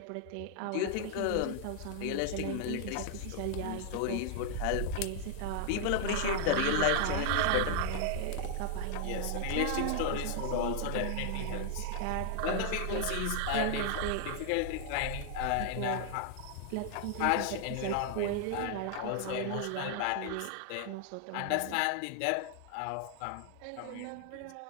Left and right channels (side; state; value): both; different; correlation 0.00